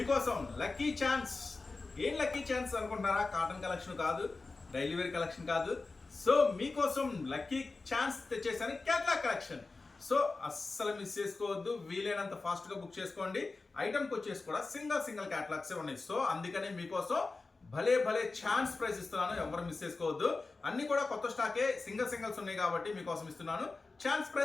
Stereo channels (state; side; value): quieter; right; 3.7 dB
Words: లక్కీ ఛాన్స్. ఏం లక్కీ ఛాన్స్ అనుకుంటున్నారా? కాటన్ కలెక్షన్ కాదు, డైలీ వేర్ కలెక్షన్ కాదు. సో మీకోసం లక్కీ ఛాన్స్ తెచ్చేసాను, కేటలాగ్ కలెక్షన్. సో అస్సలు మిస్ చేసుకోవద్దు, వీలైనంత ఫాస్ట్ గా బుక్ చేసుకోండి. ఐటమ్కి వచ్చేసి కూడా సింగిల్ కేటలాగ్స్ ఉన్నాయి. సో అందుకని మీకోసం భలే ఛాన్స్ ప్రైస్ ఇస్తున్నాను, ఎవరు మిస్ చేసుకోవద్దు. అన్ని కూడా కొత్త స్టాకే, సింగిల్స్ ఉన్నాయి కాబట్టి మీకోసం ఇస్తున్నాను ఛాన్స్